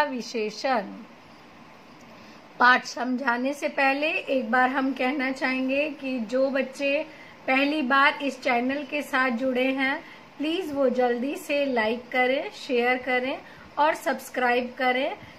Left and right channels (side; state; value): both; identical; correlation 1.00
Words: विशेषण। पाठ समझाने से पहले एक बार हम कहना चाहेंगे कि जो बच्चे पहली बार इस चैनल के साथ जुड़े हैं, प्लीज वो जल्दी से लाइक करें, शेयर करें और सब्सक्राइब करें,